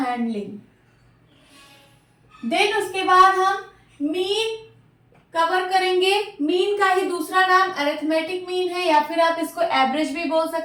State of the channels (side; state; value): both; identical; correlation 1.00